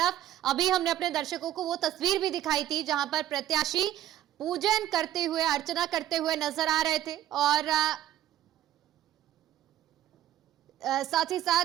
अभी हमने अपने दर्शकों को वो तस्वीर भी दिखाई थी जहां पर प्रत्याशी पूजन करते हुए, अर्चना करते हुए नजर आ रहे थे, और साथ ही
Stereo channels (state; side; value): quieter; left; 12.5 dB